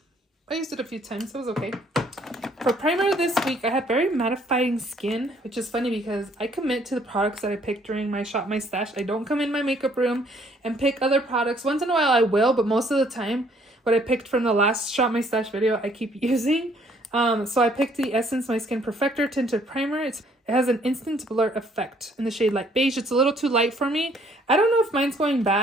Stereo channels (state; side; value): normal; both; correlation 0.63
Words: I used it a few times, so it was okay. For primer this week, I had very mattifying skin, which is funny because I commit to the products that I picked during my shop, my stash. I don't come in my makeup room and pick other products. Once in a while I will, but most of the time, what I picked from the last shop, my stash video, I keep using. So I picked the Essence My Skin Perfector Tinted Primer. It has an instant blur effect in the shade Light Beige. It's a little too light for me. I don't know if mine's going